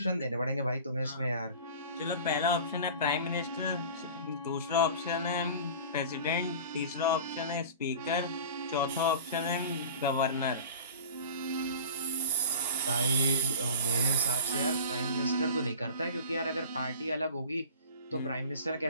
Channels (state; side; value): inverted; both; correlation -0.37